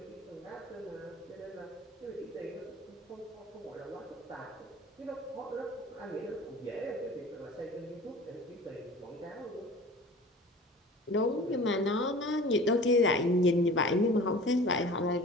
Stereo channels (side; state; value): both; normal; correlation 0.42